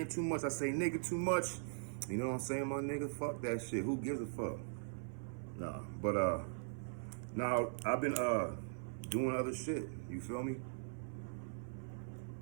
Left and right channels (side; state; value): left; silent; 51 dB below the other